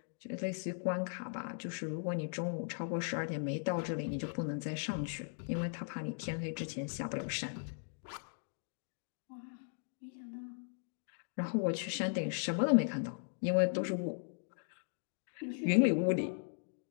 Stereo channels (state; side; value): silent; right; digital silence